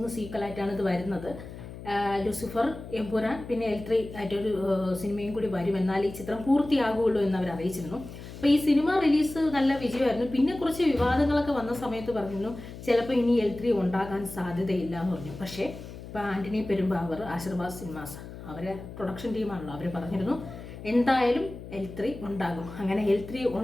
സീക്വലായിട്ടാണ് ഇത് വരുന്നത്. ലൂസിഫർ, എമ്പുരാൻ, പിന്നെ L3 ആയിട്ടൊരു സിനിമയും കൂടി വരും. എന്നാൽ ഈ ചിത്രം പൂർത്തിയാകുള്ളൂ എന്ന് അവർ അറിയിച്ചിരുന്നു. അപ്പോൾ ഈ സിനിമ റിലീസ് നല്ല വിജയമായിരുന്നു. പിന്നെ കുറച്ച് വിവാദങ്ങളൊക്കെ വന്ന സമയത്ത് പറഞ്ഞിരുന്നു ചിലപ്പോൾ ഇനി L3 ഉണ്ടാകാൻ സാധ്യതയില്ല എന്ന് പറഞ്ഞു. പക്ഷേ ഇപ്പോൾ ആൻ്റണി പെരുമ്പാവൂർ, ആശീർവാദ് സിനിമാസ് അവരെ പ്രൊഡക്ഷൻ ടീമാണല്ലോ, അവർ പറഞ്ഞിരുന്നു എന്തായാലും L3 ഉണ്ടാകും. അങ്ങനെ L3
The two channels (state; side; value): noise; left; hum, 13 dB below the sound